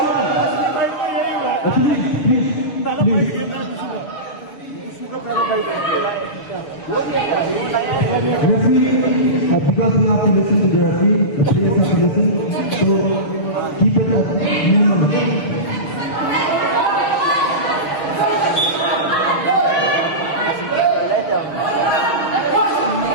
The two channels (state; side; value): late; right; 7.0 ms